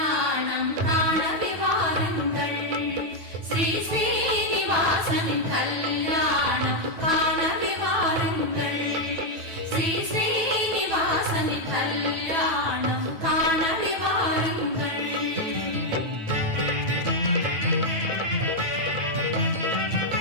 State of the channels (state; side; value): late; left; 9.1 ms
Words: காணவே வாருங்கள் ஸ்ரீ ஸ்ரீனிவாசனின் கல்யாணம் காணவே வாருங்கள் ஸ்ரீ ஸ்ரீனிவாசனின் கல்யாணம் காணவே வாருங்கள்.